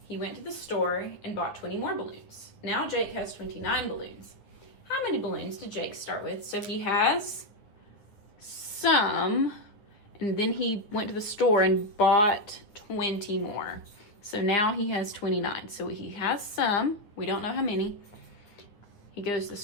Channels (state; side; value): late; right; 9.8 ms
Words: He went to the store and bought 20 more balloons. Now Jake has 29 balloons. How many balloons did Jake start with? So he has some, and then he went to the store and bought 20 more. So now he has 29. So he has some, we don't know how many. He goes to the